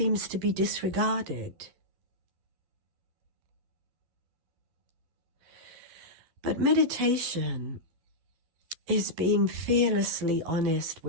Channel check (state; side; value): late; left; 12 ms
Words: to be disregarded. But meditation is being fearlessly honest